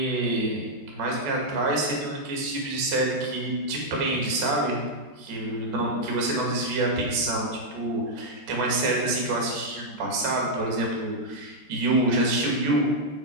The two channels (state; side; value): late; left; 13 ms